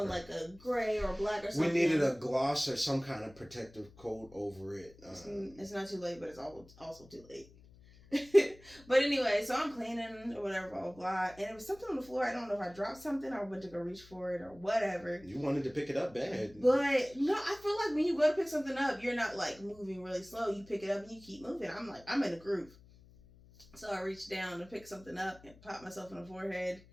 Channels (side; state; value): left; noise; hum, 23 dB below the sound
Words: unlike a gray or black or something. We needed a gloss or some kind of protective coat over it. It's not too late, but it's also too late. But anyway, so I'm cleaning or whatever, blah, blah, blah. And it was something on the floor. I don't know if I dropped something or went to go reach for it or whatever. You wanted to pick it up bad. But no, I feel like when you go to pick something up, you're not like moving really slow. You pick it up and you keep moving. I'm in a groove. So I reached down to pick something up and pop myself in the forehead